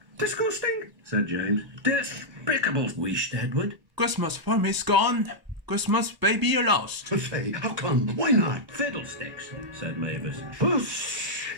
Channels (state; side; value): late; left; 1.0 ms